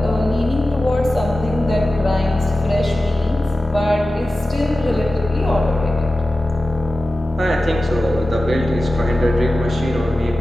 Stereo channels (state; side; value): normal; both; correlation 0.94